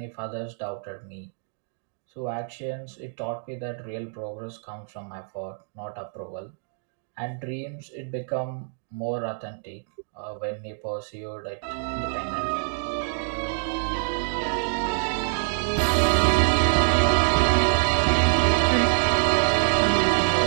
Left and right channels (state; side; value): silent; left; 61 dB below the other